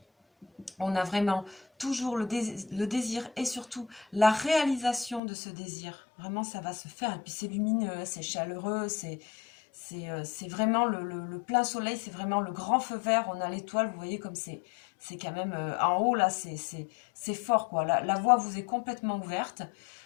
on a vraiment toujours le désir et surtout la réalisation de ce désir. Vraiment, ça va se faire. Et puis, c'est lumineux, c'est chaleureux, c'est vraiment le plein soleil, c'est vraiment le grand feu vert. On a l'étoile, vous voyez comme c'est quand même en haut, là, c'est fort, quoi. La voie vous est complètement ouverte.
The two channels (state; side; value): drops out; right; at 5.2 s